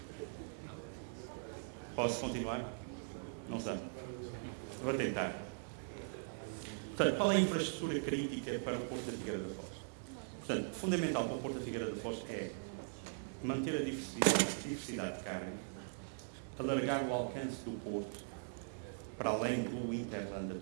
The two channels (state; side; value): silent; left; digital silence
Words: Posso continuar? Não sei. Vou tentar. Portanto, qual é a infraestrutura crítica para o Porto da Figueira da Foz? Portanto, fundamental para o Porto da Figueira da Foz é manter a diversidade de carga, alargar o alcance do Porto para além do Interland